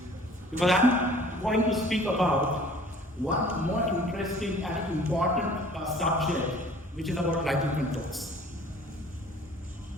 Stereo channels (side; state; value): both; normal; correlation 0.51